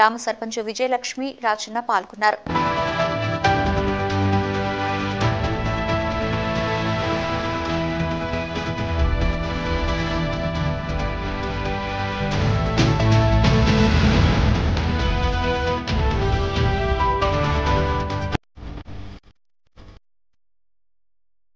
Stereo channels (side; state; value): both; identical; correlation 1.00